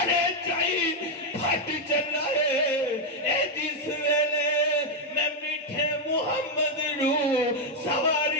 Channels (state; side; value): normal; both; correlation 0.01